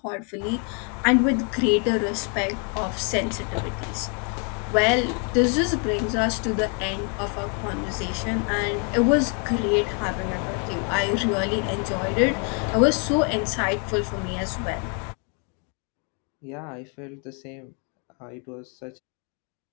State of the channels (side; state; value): right; quieter; 37.8 dB